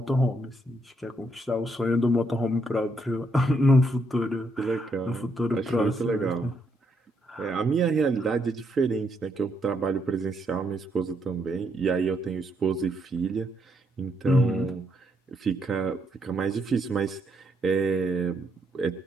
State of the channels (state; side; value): normal; both; correlation 0.75